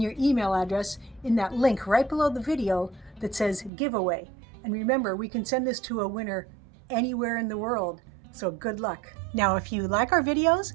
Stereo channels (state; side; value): drops out; left; at 3.7 s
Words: your email address in that link right below the video that says giveaway. And remember, we can send this to a winner anywhere in the world. So good luck. Now, if you like our videos